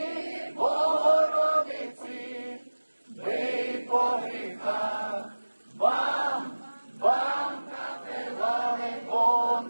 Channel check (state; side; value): inverted; both; correlation -1.00